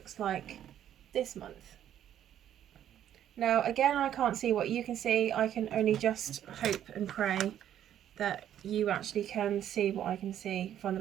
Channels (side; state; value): left; quieter; 10.7 dB